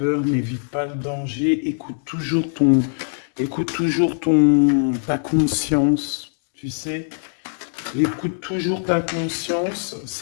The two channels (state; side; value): silent; right; digital silence